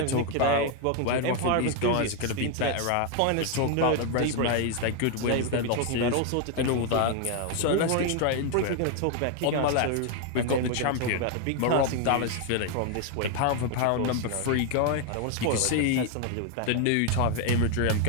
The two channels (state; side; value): different; both; correlation 0.01